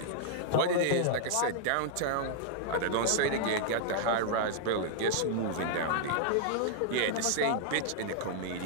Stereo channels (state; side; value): different; both; correlation 0.00